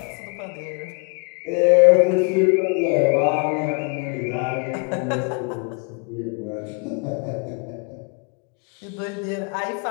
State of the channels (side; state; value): right; quieter; 34.5 dB